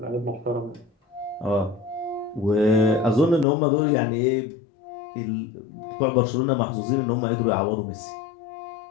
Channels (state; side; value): drops out; right; at 3.5 s